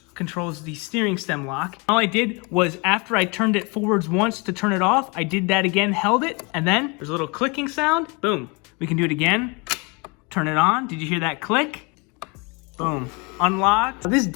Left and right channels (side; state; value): right; quieter; 29.9 dB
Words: controls the steering stem lock. All I did was after I turned it forwards once to turn it off, I did that again, held it, and then there's a little clicking sound. Boom. We can do it again. Turn it on. Did you hear that click? Boom. Unlocked. This